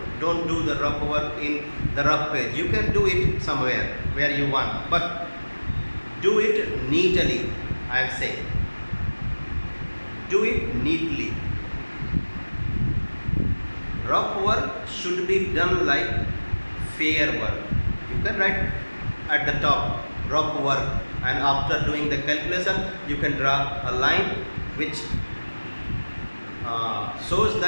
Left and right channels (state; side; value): inverted; both; correlation -1.00